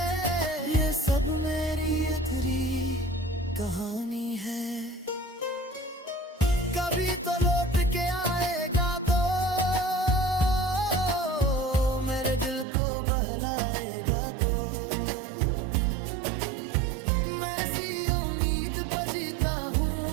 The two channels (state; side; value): drops out; left; at 12.7 s